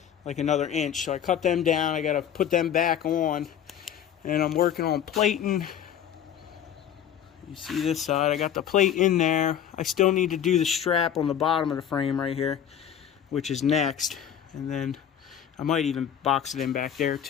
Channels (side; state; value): right; quieter; 9.5 dB